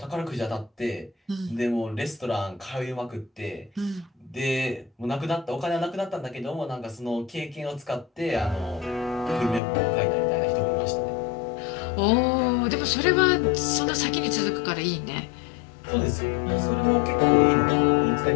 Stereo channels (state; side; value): drops out; right; at 9.6 s